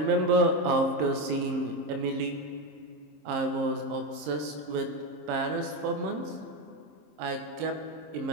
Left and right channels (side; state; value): left; late; 26 ms